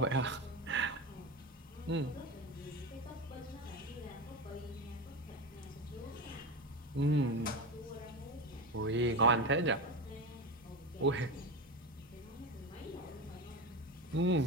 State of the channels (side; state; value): both; normal; correlation 0.21